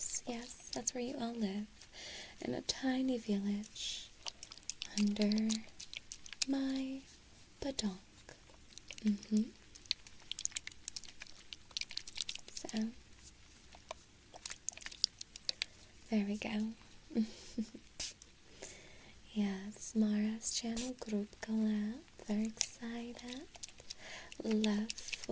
Yes, that's where you all live. In a tiny village. Under my badonk. So, there we go. Yes, Mara's channel group collab. Very excited. Love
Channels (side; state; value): both; identical; correlation 1.00